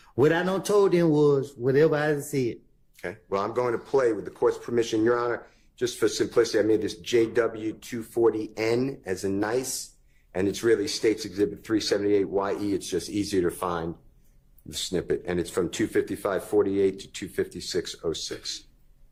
what I done told them was whatever I said. Okay. Well, I'm going to play with the court's permission, Your Honor. Just for simplicity, I made this JW240N as a nice, and it's really State's Exhibit 378YE. It's just easier to find the snippet, and it's from 255:48 to 256:06.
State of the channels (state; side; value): identical; both; correlation 1.00